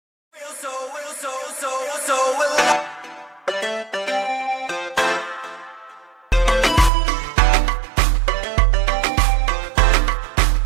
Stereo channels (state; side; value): drops out; left; at 6.9 s